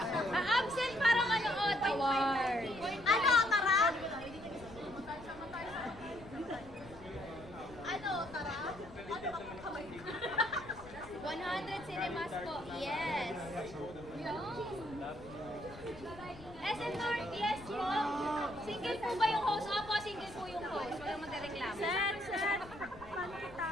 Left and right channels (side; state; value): left; noise; rumble, 18 dB below the sound